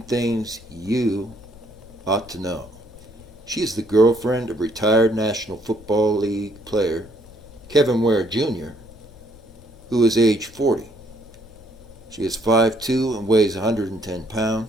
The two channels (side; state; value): left; noise; rumble, 22 dB below the sound